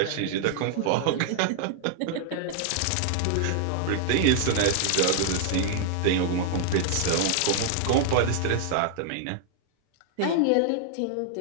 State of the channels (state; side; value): different; both; correlation -0.01